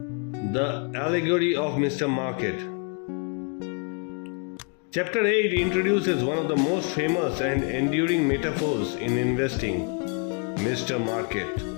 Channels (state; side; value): quieter; right; 37.4 dB